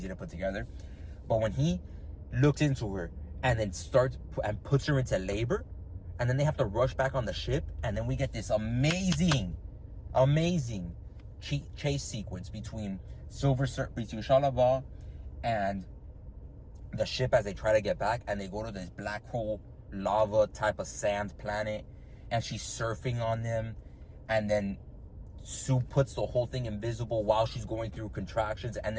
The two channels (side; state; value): both; identical; correlation 1.00